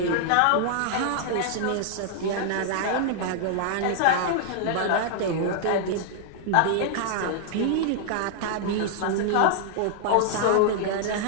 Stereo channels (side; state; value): both; different; correlation -0.01